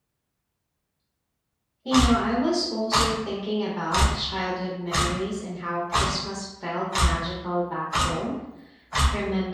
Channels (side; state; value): both; identical; correlation 1.00